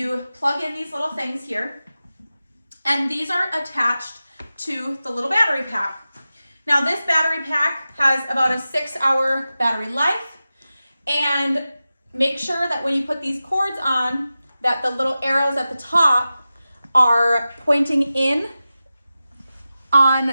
plug in these little things here, and these are attached to the little battery pack. Now this battery pack has about a 6-hour battery life, and make sure that when you put these cords on, that the little arrows at the top are pointing in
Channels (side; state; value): both; inverted; correlation -0.94